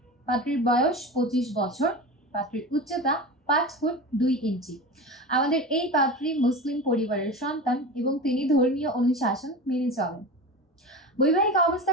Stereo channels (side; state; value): both; normal; correlation 0.29